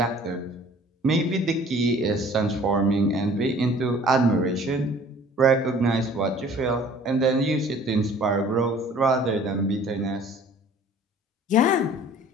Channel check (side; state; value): both; normal; correlation 0.50